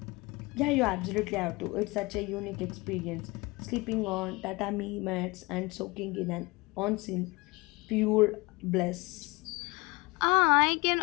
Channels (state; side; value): quieter; right; 24.3 dB